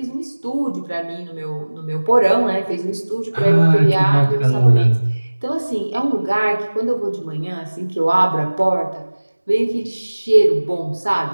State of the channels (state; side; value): inverted; both; correlation -1.00